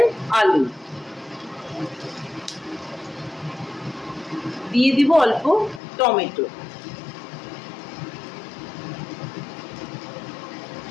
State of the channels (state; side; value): drops out; right; at 5.8 s